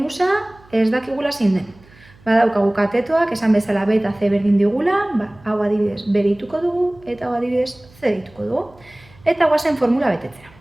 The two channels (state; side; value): noise; right; hum, 27 dB below the sound